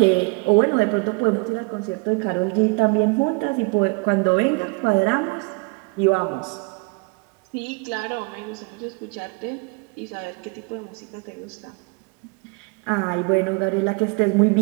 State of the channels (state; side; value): quieter; left; 30.5 dB